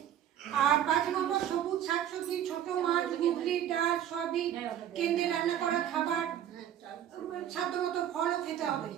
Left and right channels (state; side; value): quieter; left; 10.5 dB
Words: আর 5 নম্বর সবুজ শাকসবজি, ছোট মাছ, মুগলি ডাল, সয়াবিন, কেন্দ্রে রান্না করা খাবার, সাধ্যমতো ফলও খেতে হবে।